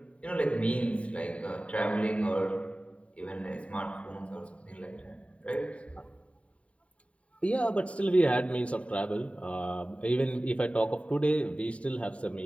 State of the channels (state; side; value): late; right; 0.063 ms